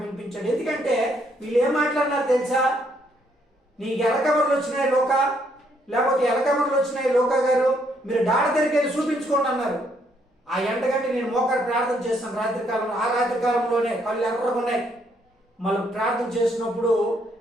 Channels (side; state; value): both; normal; correlation 0.71